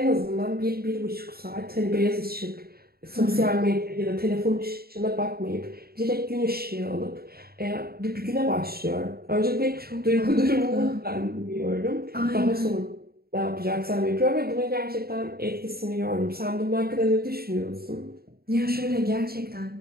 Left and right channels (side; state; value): left; late; 0.45 ms